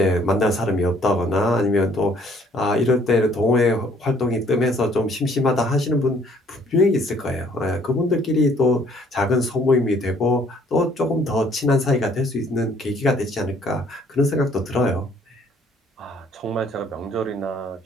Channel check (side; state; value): both; normal; correlation 0.61